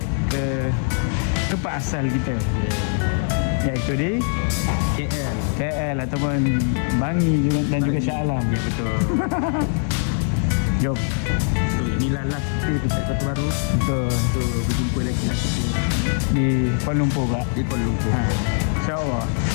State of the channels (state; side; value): silent; right; 60 dB below the other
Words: ke tempat asal kita. Iaitu di KL ataupun Bangi dan juga Shah Alam. Ya betul. Jom. So inilah last kita dekat Kota Baru. Betul. So berjumpa lagi lah kita Di Kuala Lumpur pula. di Kuala Lumpur. InsyaAllah.